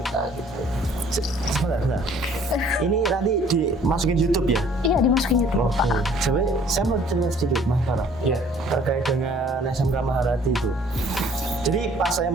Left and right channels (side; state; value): both; normal; correlation 0.56